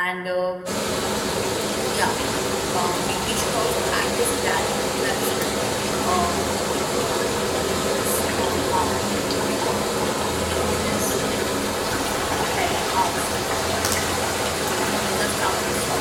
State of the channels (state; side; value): identical; both; correlation 1.00